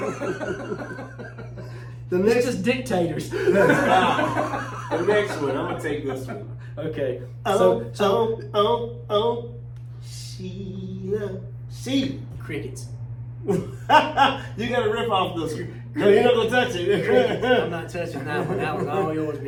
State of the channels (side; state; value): both; identical; correlation 1.00